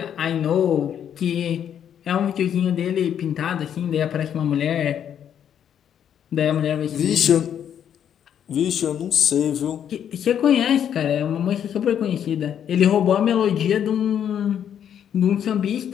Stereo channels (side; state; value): right; quieter; 9.2 dB